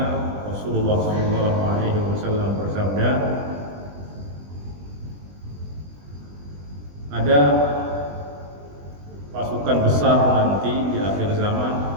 Rasulullah sallallahu alaihi wasallam bersabda, ada pasukan besar nanti di akhir zaman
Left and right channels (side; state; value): left; late; 20 ms